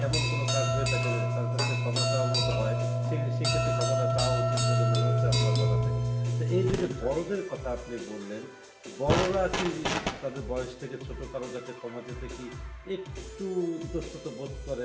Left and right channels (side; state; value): both; identical; correlation 1.00